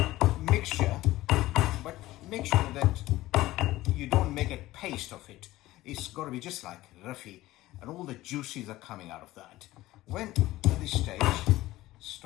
mixture, but make sure that you don't make a paste of it. It's got to be just like roughy, and all the juices are coming out of that. When at this stage,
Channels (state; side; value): quieter; right; 16.9 dB